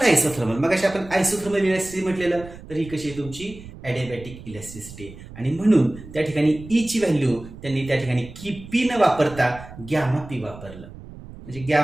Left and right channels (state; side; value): noise; right; rumble, 16 dB below the sound